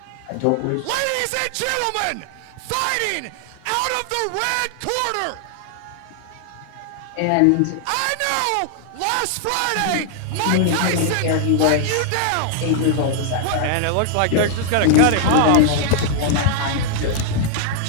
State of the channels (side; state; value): both; different; correlation 0.00